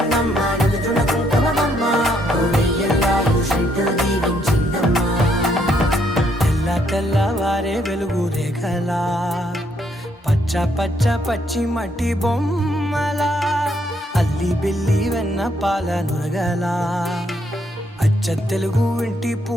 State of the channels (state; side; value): normal; both; correlation 0.72